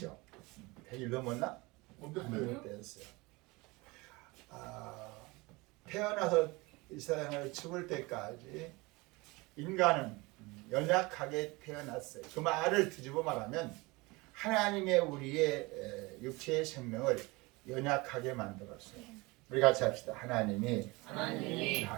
100일 넘었나? 못 됐어요. 태어나서 이 세상을 죽을 때까지 인간은 연약하게 태어났어요. 그 말을 뒤집어 말하면 하나님의 우리의 육체의 생명을 연약하게 만들었어요. 우리 같이 합시다. 하나님이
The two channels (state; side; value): quieter; left; 24.0 dB